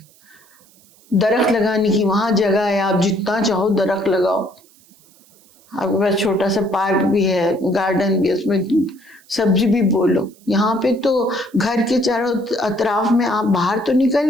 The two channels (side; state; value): right; noise; hiss, 29 dB below the sound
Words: درخت لگانے کی وہاں جگہ ہے، آپ جتنا چاہو درخت لگاؤ. آپ کے پاس چھوٹا سا پارک بھی ہے، گارڈن بھی، اس میں سبزی بھی بولو. یہاں پہ تو گھر کے چاروں اطراف میں آپ باہر تو نکل